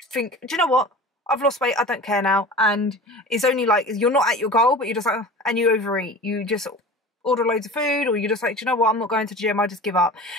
think, do you know what, I've lost weight, I don't care now. And it's only like you're not at your goal but you're just like, and you overeat, you just order loads of food, or you're just like, do you know what, I'm not going to the gym, I just give up.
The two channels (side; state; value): both; normal; correlation 0.37